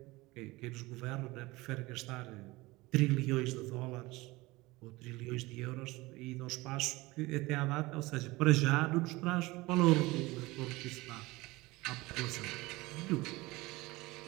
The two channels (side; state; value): left; quieter; 21.2 dB